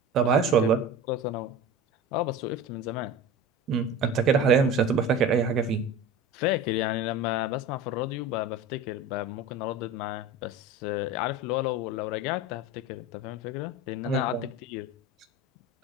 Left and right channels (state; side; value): normal; both; correlation 0.33